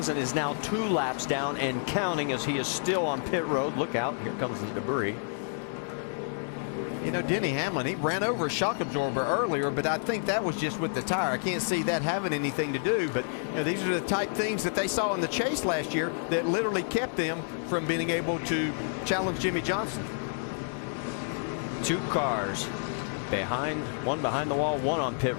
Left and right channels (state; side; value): silent; right; digital silence